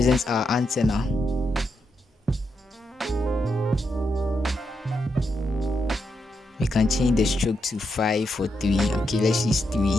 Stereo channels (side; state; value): both; normal; correlation 0.83